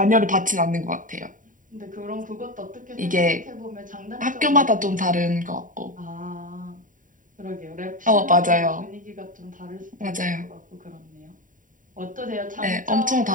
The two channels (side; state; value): left; late; 0.38 ms